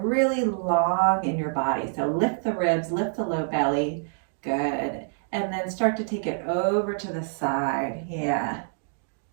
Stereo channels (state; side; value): silent; left; digital silence